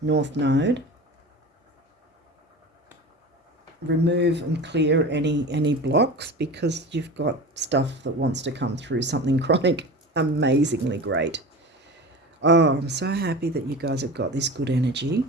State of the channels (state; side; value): normal; both; correlation 0.32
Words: North node. Remove and clear any blocks, because you've got stuff that wants to come through, something chronic. Amazingly great. Oh, I'm so happy that you guys have got this good energy.